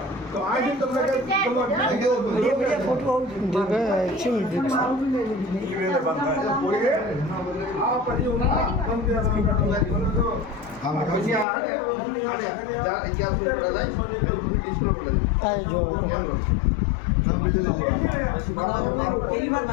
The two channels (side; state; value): right; drops out; at 11.5 s